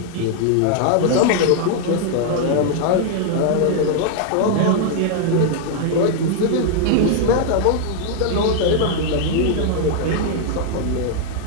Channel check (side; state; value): both; different; correlation 0.00